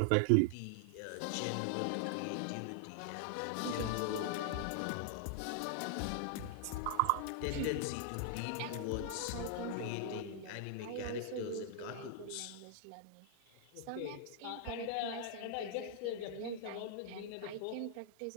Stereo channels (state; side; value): different; both; correlation 0.00